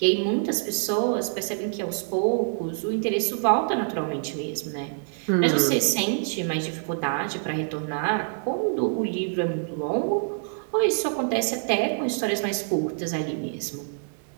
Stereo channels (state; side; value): silent; left; digital silence